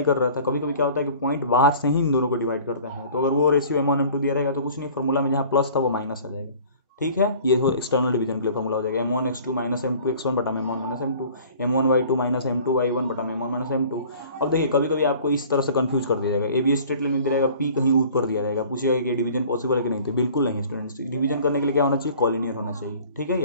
कर रहा था। कभी कभी क्या होता है कि पॉइंट बाहर से ही इन दोनों को डिवाइड करते हैं। तो अगर वो रेशियो m1 m2 दिया रहेगा तो कुछ नहीं, फॉर्मूला में जहाँ प्लस था वो माइनस आ जाएगा। ठीक है, ये हो एक्सटर्नल डिवीजन के लिए फॉर्मूला हो जाएगा m1x2 माइनस m2x1 बटा m1 minus m2, m1y2 minus m2y1 बटा m1 माइनस m2। अब देखिए कभी कभी आपको इस तरह से कंफ्यूज कर दिया जाएगा, ए बी स्ट्रेट लाइन में दिया रहेगा, p कहीं ऊपर दिया रहेगा, पूछेगा कि डिवीजन पॉसिबल है कि नहीं। तो बिल्कुल नहीं स्टूडेंट्स, डिवीजन करने के लिए क्या होना चाहिए, कॉलिनियर होना चाहिए। ठीक है,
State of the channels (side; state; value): both; inverted; correlation -0.48